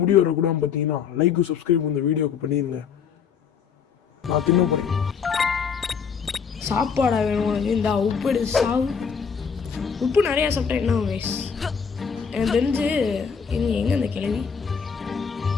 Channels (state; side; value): quieter; right; 6.5 dB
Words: முடி வரக்கூடாது பார்த்தீங்கன்னா லைக் சப்ஸ்கிரைப் இந்த வீடியோக்கு பண்ணிடுங்க. நான் தின்ன போகிறேன். சாப்பாடா வேணும் உனக்கு? இந்த உப்பு எடுத்து சாவு. உப்பு நிறையா சாப்பிட்டா என்ன வயசு? எனக்கு தெரிஞ்சு எங்கே அந்த கிழவி